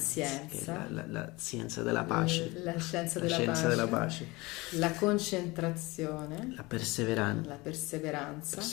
la scienza della pace, la scienza della pace, la concentrazione, la perseveranza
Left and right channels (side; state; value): right; quieter; 23.0 dB